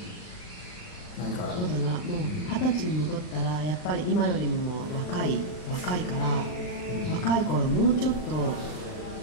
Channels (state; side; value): late; right; 39 ms